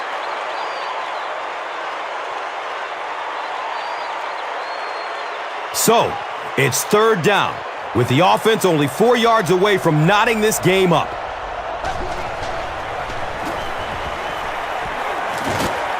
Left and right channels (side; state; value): both; identical; correlation 1.00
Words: So, it's third down, with the offense only 4 yards away from knotting this game up.